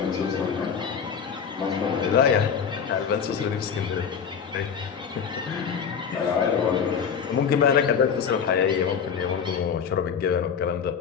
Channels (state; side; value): quieter; right; 6.9 dB